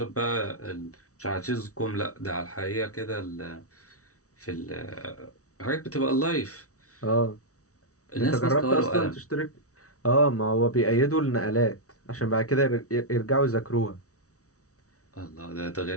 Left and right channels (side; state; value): right; late; 0.65 ms